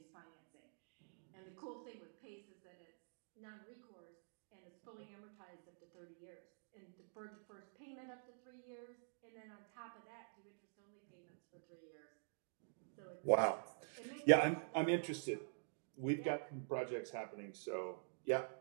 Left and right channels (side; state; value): left; silent; digital silence